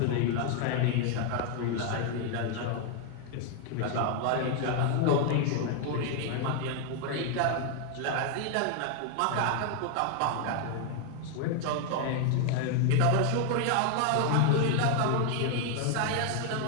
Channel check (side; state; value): both; different; correlation 0.00